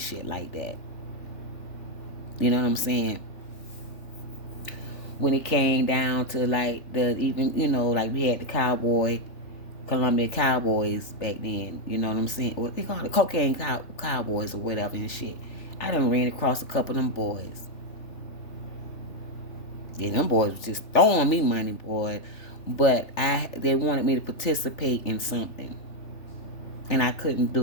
like that. You know what I'm saying? When it came down to like the even like we had the Columbia Cowboys back then. You know what I'm saying? What they call it, cocaine cowboys or whatever and shit. I done ran across a couple of them boys. Yeah, them boys was just throwing me money, boy. But they wanted me to participate in something, and I couldn't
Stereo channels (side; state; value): right; late; 3.4 ms